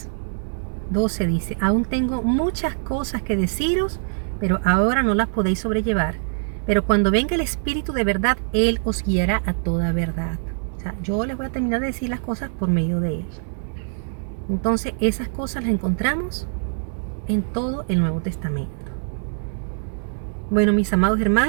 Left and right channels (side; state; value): left; silent; 62 dB below the other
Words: dice, aún tengo muchas cosas que deciros, pero ahora no las podéis sobrellevar. Pero cuando venga el Espíritu de verdad, Él os guiará a toda verdad. Yo les voy a terminar de decir las cosas por medio de Él. Entonces, esas cosas las encontramos en todo el Nuevo Testamento. Bueno, mis amados